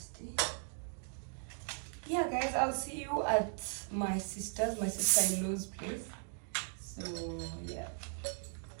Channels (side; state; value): left; silent; 53 dB below the other